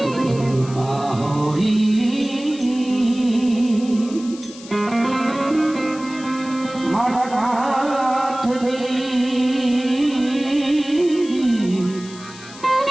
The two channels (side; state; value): left; noise; hiss, 18 dB below the sound